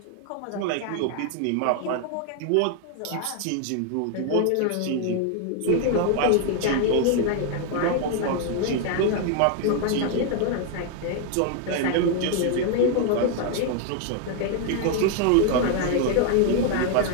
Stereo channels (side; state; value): both; different; correlation 0.00